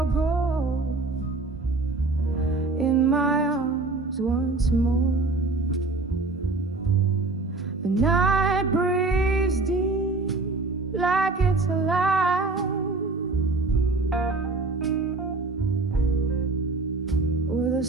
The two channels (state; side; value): quieter; left; 3.4 dB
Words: gold in my arms once more. The night breathes deep like it's alive, with a